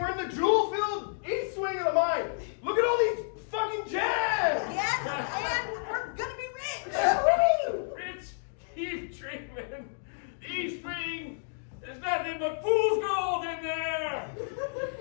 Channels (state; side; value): silent; right; digital silence